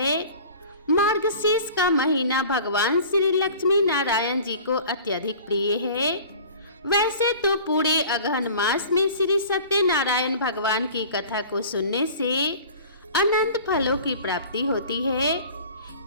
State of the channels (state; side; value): inverted; both; correlation -0.43